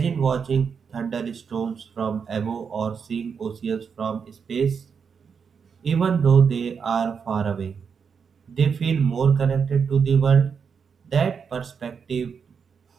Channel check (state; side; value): quieter; left; 6.3 dB